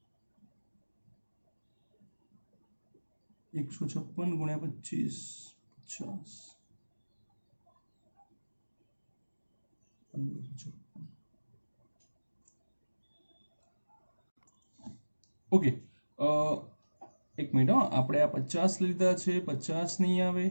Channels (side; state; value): both; inverted; correlation -1.00